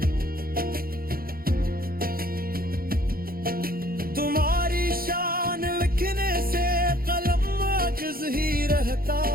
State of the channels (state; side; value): late; left; 0.43 ms